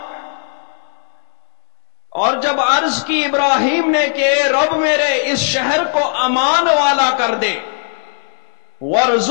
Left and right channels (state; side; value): silent; right; digital silence